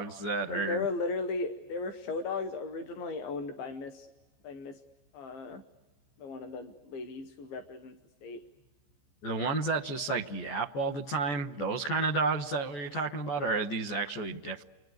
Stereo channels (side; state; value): right; late; 14 ms